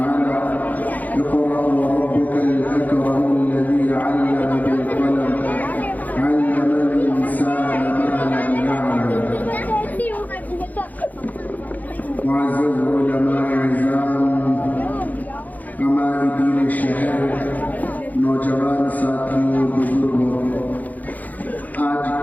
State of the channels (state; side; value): late; right; 0.080 ms